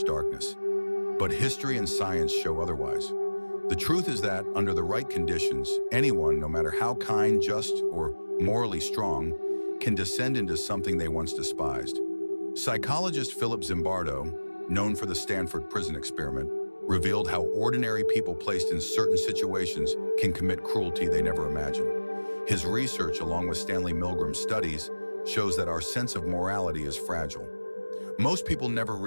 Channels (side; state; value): both; inverted; correlation -1.00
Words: darkness. But history and science show otherwise. The truth is that, under the right conditions, anyone, no matter how kind, just, or morally strong, can descend into something they once despised. Psychologist Philip Zimbardo, known for the Stanford Prison Experiment, revealed how ordinary people placed in certain situations can commit cruelty they never imagined. His research, along with Stanley Milgram's studies, shows that our sense of morality is fragile. Most people never